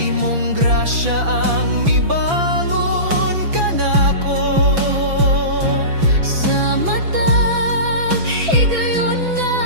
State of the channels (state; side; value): late; left; 5.9 ms